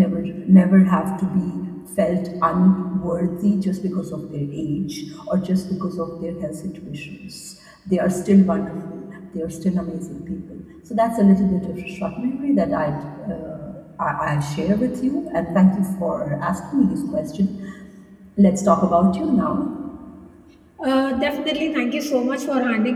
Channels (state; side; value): identical; both; correlation 1.00